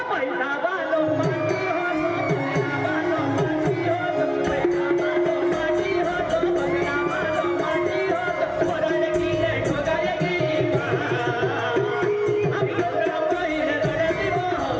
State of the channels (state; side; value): identical; both; correlation 1.00